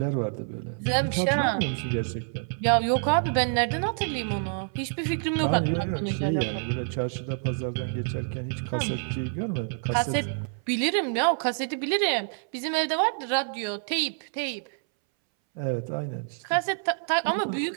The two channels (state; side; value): silent; left; 60 dB below the other